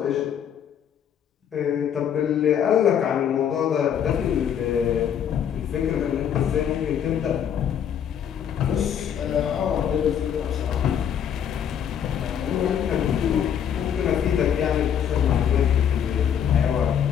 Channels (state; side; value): quieter; right; 8.8 dB